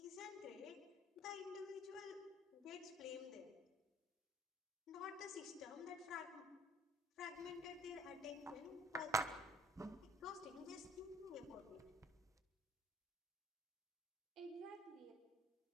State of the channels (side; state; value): both; normal; correlation 0.57